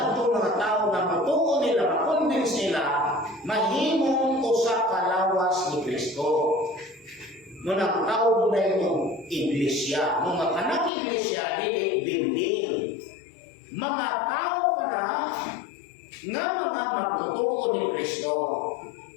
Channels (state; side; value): drops out; right; at 10.9 s